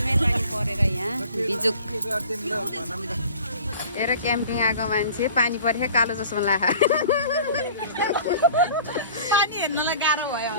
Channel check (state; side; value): inverted; both; correlation -0.46